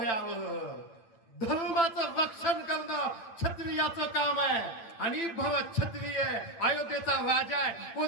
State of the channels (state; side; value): late; right; 8.9 ms